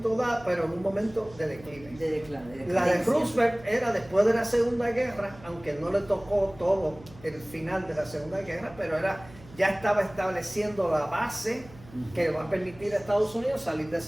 dado, pero en un momento de declive. La de Roosevelt era después de la Segunda Guerra, aunque no le tocó todo el final de la Segunda Guerra, pero ya estaba estableciendo la base que va a permitir a Estados Unidos salir de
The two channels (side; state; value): right; noise; hum, 21 dB below the sound